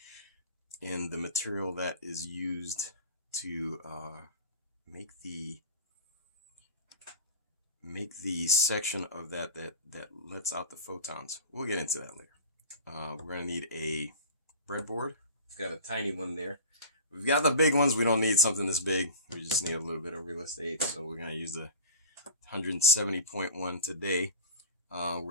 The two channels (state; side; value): inverted; both; correlation -0.35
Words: in the material that is used to make the section of that lets out the photons. We'll get into that later. We're going to need a breadboard. We've got a tiny one there. We've got the big ones. We don't need something this big. We just need a little bit of real estate. So we're going to use the 170.1 today. We're